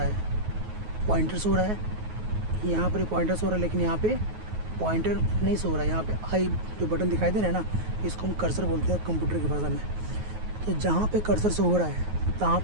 है, पॉइंटर शो हो रहा है। यहाँ पर पॉइंटर शो हो रहा है, लेकिन यहाँ पे पॉइंटर नहीं सो रहा है। यहाँ पे आई जो बटन दिखाई दे रहा है ना, इसको हम कर्सर बोलते हैं कंप्यूटर की भाषा में। तो जहाँ पे कर्सर शो हो रहा है तहाँ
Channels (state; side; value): late; left; 9.4 ms